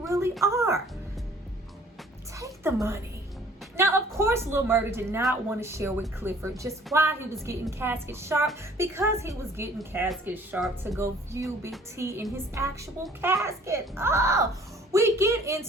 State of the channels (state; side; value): normal; both; correlation 0.54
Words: are. Take the money. Now, of course, Lil Murda did not want to share with Clifford just why he was getting casket sharp, because he was getting casket sharp to go view Big T in his actual casket. Oh, we get